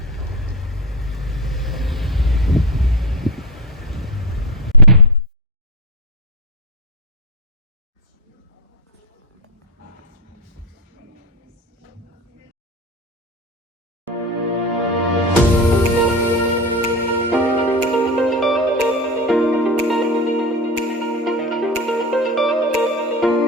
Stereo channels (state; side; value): normal; both; correlation 0.18